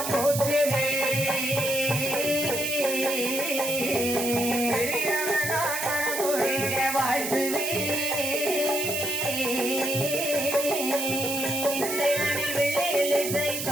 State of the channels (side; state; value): right; noise; hiss, 4 dB below the sound